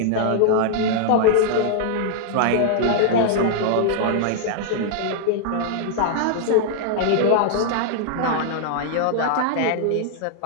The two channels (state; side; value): different; both; correlation -0.01